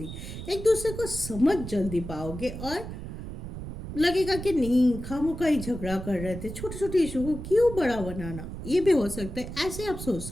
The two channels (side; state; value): right; noise; rumble, 9 dB below the sound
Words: एक दूसरे को समझ जल्दी पाओगे और लगेगा कि नहीं खामोखा ही झगड़ा कर रहे थे, छोटे छोटे इशू को क्यों बड़ा बनाना, ये भी हो सकता है, ऐसे आप सोच